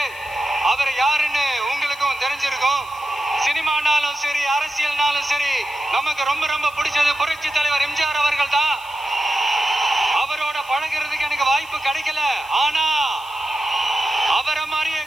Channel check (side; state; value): left; noise; hiss, 22 dB below the sound